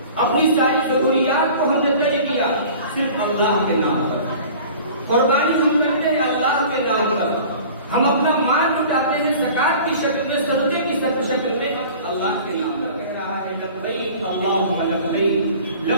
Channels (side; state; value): both; inverted; correlation -0.44